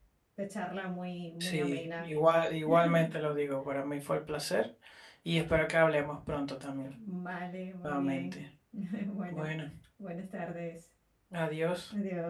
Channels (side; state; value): both; identical; correlation 1.00